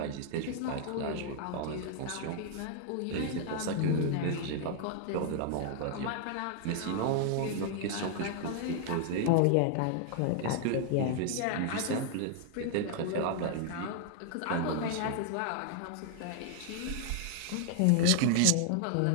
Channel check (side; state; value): both; different; correlation 0.00